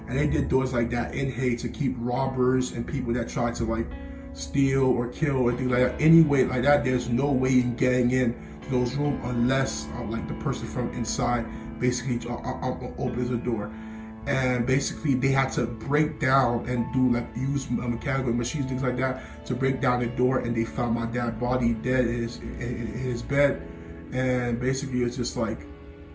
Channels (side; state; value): both; identical; correlation 1.00